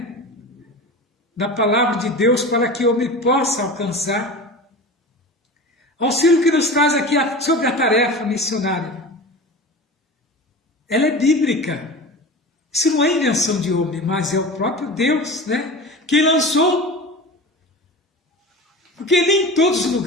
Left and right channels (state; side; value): normal; both; correlation 0.32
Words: da palavra de Deus para que o homem possa alcançar auxílio que nos traz aqui sobre a tarefa missionária. Ela é bíblica. Isso não é invenção de homem, mas é o próprio Deus, né, que lançou. Porque nem em todos os